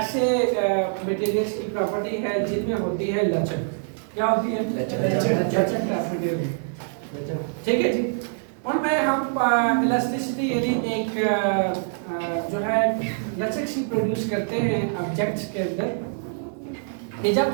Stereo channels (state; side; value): silent; left; 62 dB below the other